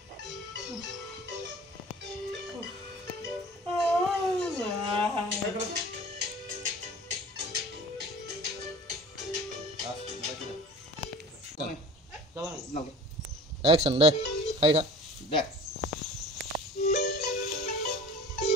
action đây hay đó Dah.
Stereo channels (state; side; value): normal; both; correlation 0.42